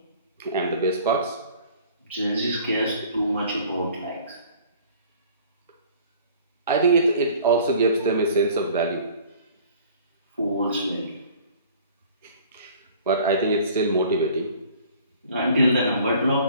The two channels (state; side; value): inverted; both; correlation -0.50